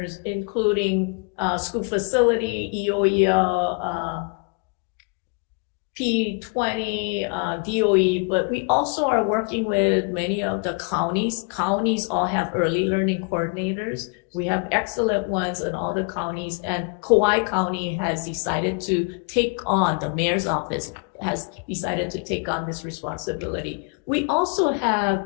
including school facility, EOEL, P20, DOE, but we also are working with many of the counties. Counties all have early learning coordinators. We have excellent ones in all the counties, and Kauai County has decided to take on, the mayor's office has decided to take on this responsibility. We also have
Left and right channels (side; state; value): right; quieter; 34.5 dB